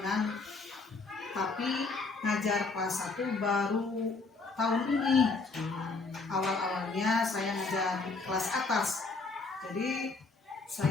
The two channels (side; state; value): right; quieter; 3.9 dB